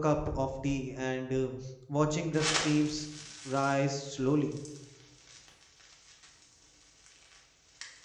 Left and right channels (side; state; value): both; identical; correlation 1.00